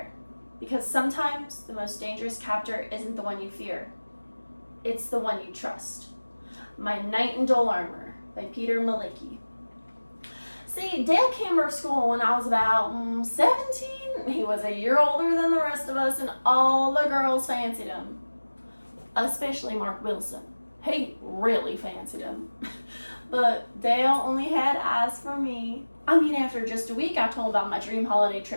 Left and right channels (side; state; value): both; inverted; correlation -1.00